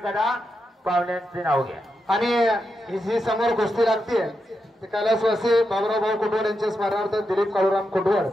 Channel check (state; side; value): normal; both; correlation 0.86